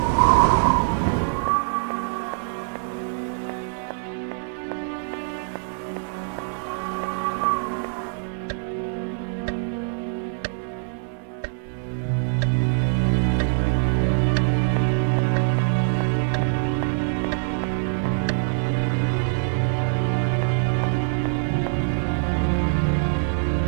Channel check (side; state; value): left; silent; digital silence